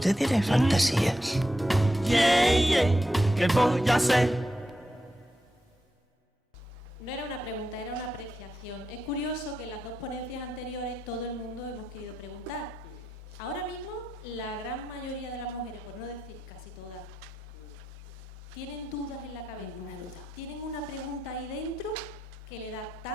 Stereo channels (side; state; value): both; normal; correlation 0.87